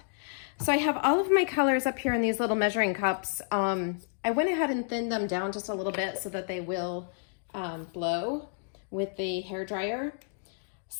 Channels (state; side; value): silent; right; digital silence